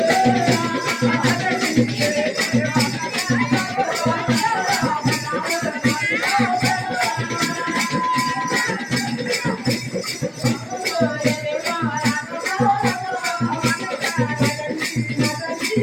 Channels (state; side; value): identical; both; correlation 1.00